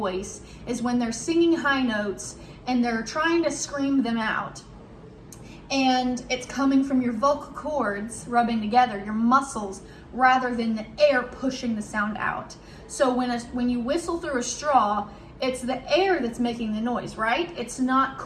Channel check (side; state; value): both; identical; correlation 1.00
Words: is when they're singing high notes and they're trying to scream them out, and it's coming from your vocal cords rubbing together, your muscles, rather than the air pushing the sound out. So when you whistle through a straw, it's the air that's making the noise, right? It's not